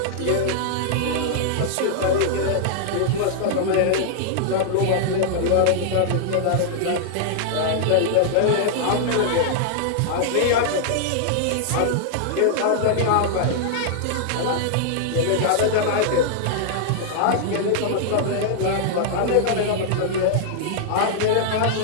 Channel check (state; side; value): different; both; correlation -0.01